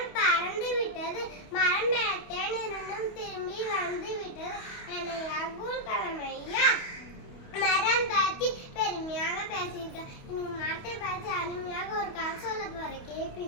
பறந்து விட்டது, மரம் பெறத்தேன் இருந்தும் திரும்பி வந்து விட்டது. என்னை அப்துல் கலாம் ஐயா மரம் பார்த்து பெருமையாக பேசியிருக்கேன். இன்னைக்கு மரத்தை பார்த்து அருமையாக ஒரு கதை சொல்ல போறேன்,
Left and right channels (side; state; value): right; late; 28 ms